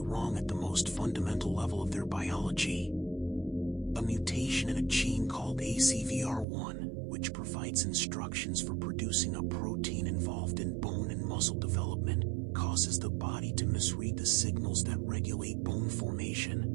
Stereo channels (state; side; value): drops out; left; at 6.5 s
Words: at the most fundamental level of their biology. A mutation in a gene called ACVR1, which provides instructions for producing a protein involved in bone and muscle development, causes the body to misread the signals that regulate bone formation.